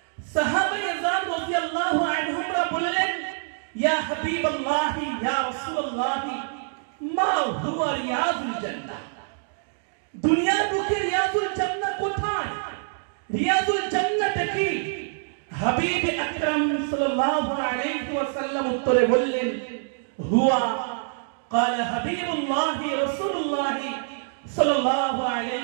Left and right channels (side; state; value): left; silent; digital silence